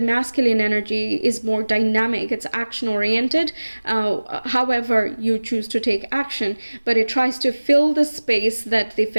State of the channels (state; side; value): inverted; both; correlation -1.00